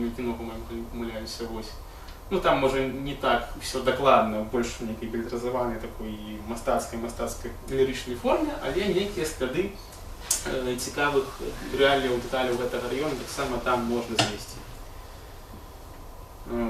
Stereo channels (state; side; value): identical; both; correlation 1.00